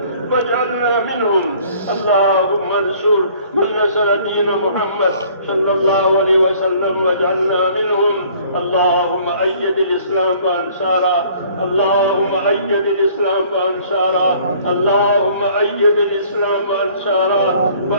واجعلنا منهم. اللهم انصر من نصر دين محمد صلى الله عليه وسلم واجعلنا منهم. اللهم أيد الإسلام وأنصاره. اللهم أيد الإسلام وأنصاره. اللهم أيد الإسلام وأنصاره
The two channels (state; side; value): inverted; both; correlation -0.56